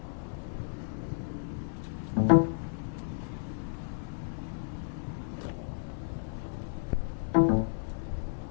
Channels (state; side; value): silent; right; digital silence